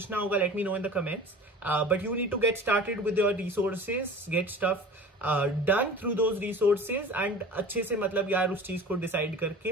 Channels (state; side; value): normal; both; correlation 0.39